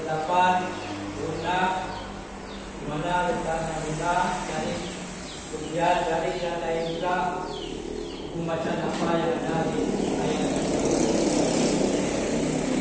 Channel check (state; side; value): identical; both; correlation 1.00